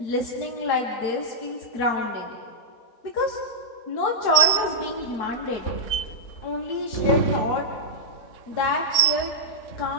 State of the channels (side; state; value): right; late; 4.7 ms